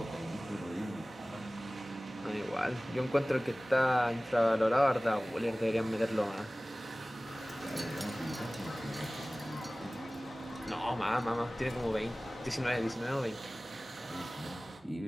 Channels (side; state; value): both; normal; correlation 0.98